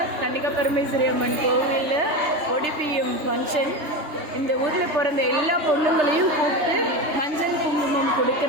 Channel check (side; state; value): left; late; 3.3 ms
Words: கன்னிகா பரமேஸ்வரி அம்மன் கோவிலில் ஒடிபிஎம் ஃபங்க்ஷன். இந்த ஊரில் பிறந்த எல்லா பொண்ணுங்களையும் கூப்பிட்டு மஞ்சள் குங்குமம்